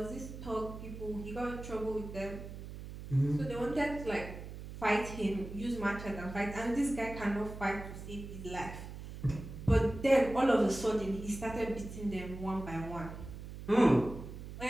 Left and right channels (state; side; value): noise; right; hum, 11 dB below the sound